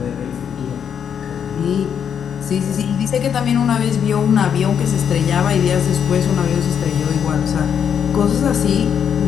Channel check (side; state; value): right; quieter; 8.0 dB